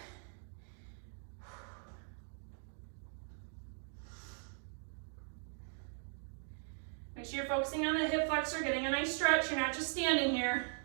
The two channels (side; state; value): left; silent; 51 dB below the other